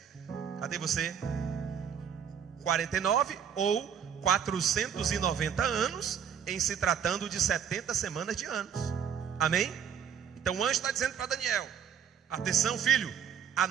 Cadê você? 49 ou 490 anos, em se tratando de 70 semanas de anos. Amém? Então o anjo está dizendo para Daniel: atenção, filho,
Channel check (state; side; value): quieter; left; 7.9 dB